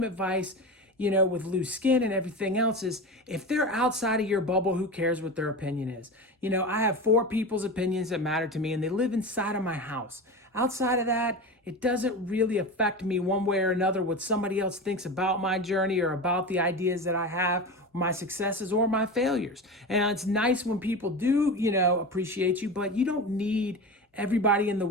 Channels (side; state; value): both; normal; correlation 0.26